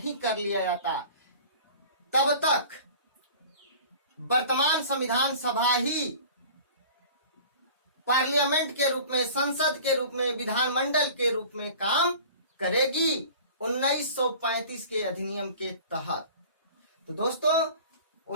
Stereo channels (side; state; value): both; inverted; correlation -0.43